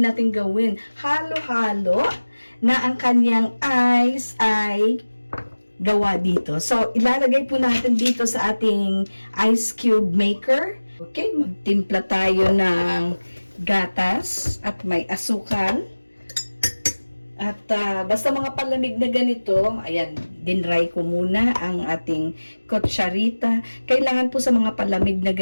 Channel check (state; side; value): inverted; both; correlation -1.00